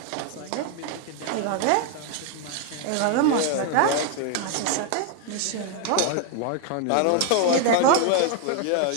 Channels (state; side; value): different; both; correlation 0.00